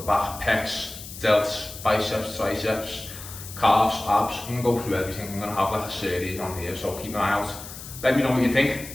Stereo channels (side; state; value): left; noise; hiss, 13 dB below the sound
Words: pecs, delts, biceps, triceps, calves, abs. I'm going to go through everything. I'm going to have like a series on here, so keep an eye out. Let me know what you think,